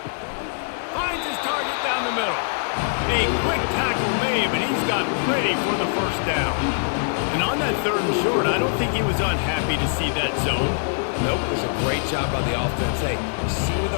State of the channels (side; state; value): right; silent; 60 dB below the other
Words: Finds his target down the middle. A quick tackle made, but he's got plenty for the first down. And on that 3rd and short, I don't think he was unhappy to see that zone. Nope, it was a great job by the offense. Hey, you see where